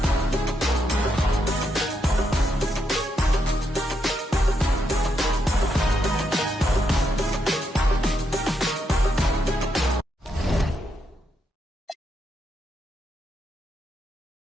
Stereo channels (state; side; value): normal; both; correlation 0.80